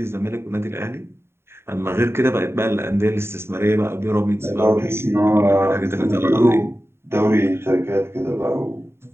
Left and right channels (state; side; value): late; left; 0.12 ms